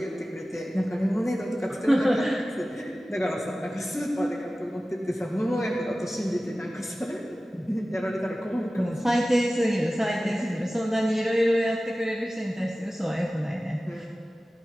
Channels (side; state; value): both; normal; correlation 0.96